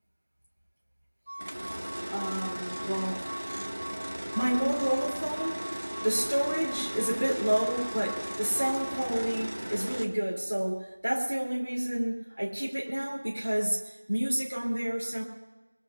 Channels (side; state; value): both; inverted; correlation -1.00